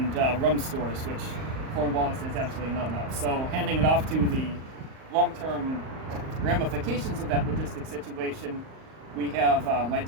rum stores, which Cornwallis has absolutely none of. So, handing it off to the long-term ramifications of that logistic situation, we have my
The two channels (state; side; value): late; left; 38 ms